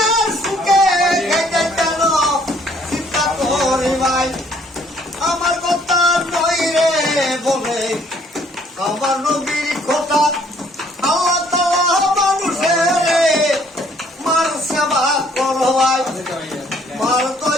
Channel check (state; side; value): normal; both; correlation 0.62